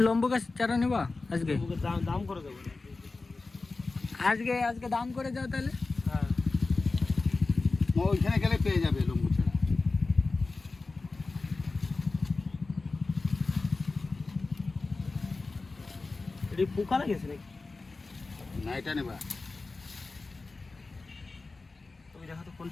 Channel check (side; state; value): right; quieter; 3.7 dB